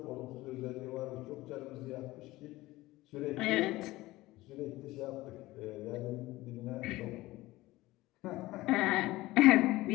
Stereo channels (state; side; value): quieter; right; 18.4 dB